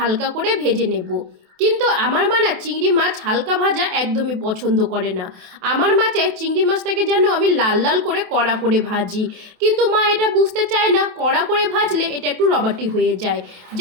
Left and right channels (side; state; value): left; late; 27 ms